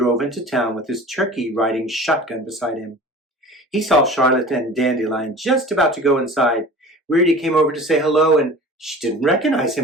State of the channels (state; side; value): normal; both; correlation 0.40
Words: into town with his turkey riding shotgun beside him. He saw Charlotte and Dandelion just about to go inside. Weirdy came over to say hello, and she didn't recognize